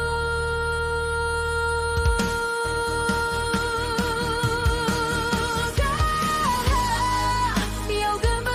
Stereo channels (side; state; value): both; identical; correlation 1.00